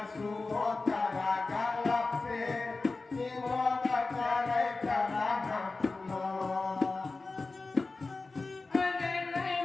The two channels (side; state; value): right; quieter; 3.7 dB